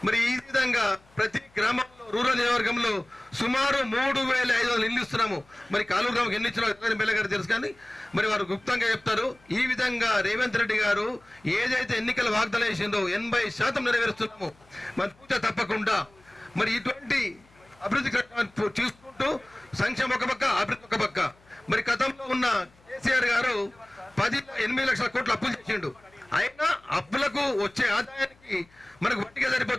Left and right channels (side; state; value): left; noise; hum, 30 dB below the sound